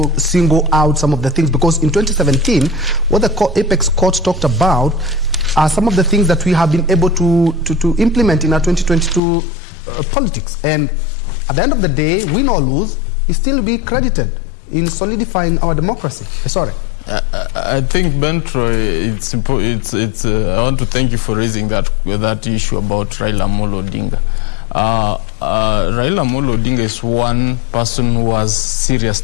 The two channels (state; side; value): drops out; right; at 9.2 s